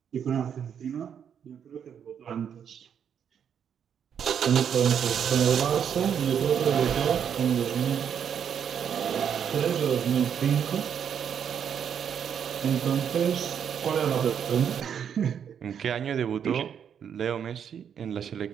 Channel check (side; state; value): left; quieter; 8.1 dB